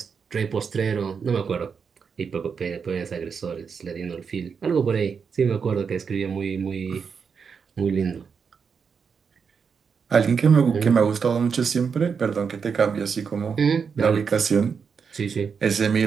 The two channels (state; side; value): quieter; left; 6.1 dB